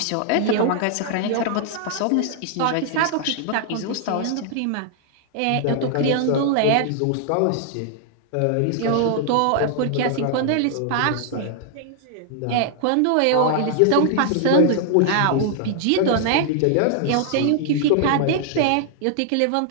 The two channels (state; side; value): different; both; correlation 0.00